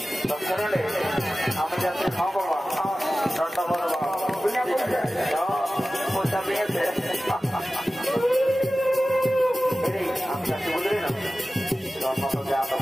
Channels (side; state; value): both; normal; correlation 0.96